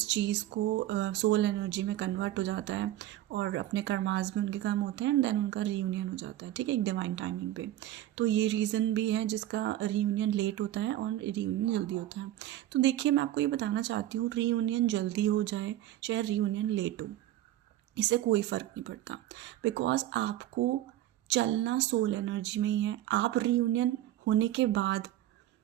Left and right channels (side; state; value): left; quieter; 13.7 dB